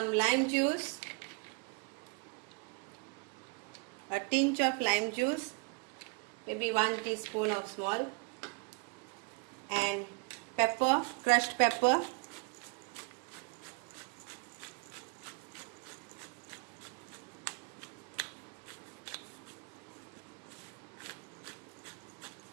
lime juice, a tinge of lime juice, maybe 1 teaspoon of small, and pepper, crushed pepper.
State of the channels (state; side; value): quieter; left; 34.4 dB